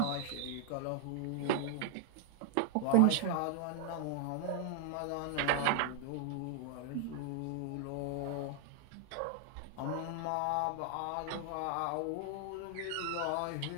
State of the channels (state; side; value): different; both; correlation 0.00